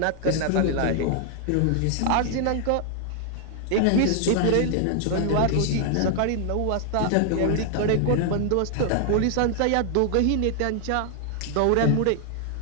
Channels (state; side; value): different; both; correlation 0.00